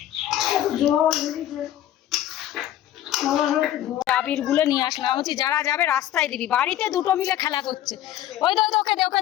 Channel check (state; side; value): quieter; right; 12.4 dB